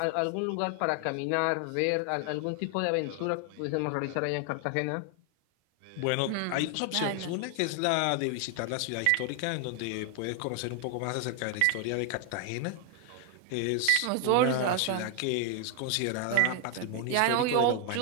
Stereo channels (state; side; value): different; both; correlation 0.00